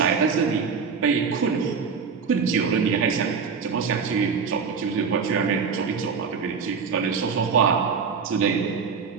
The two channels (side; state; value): left; quieter; 5.7 dB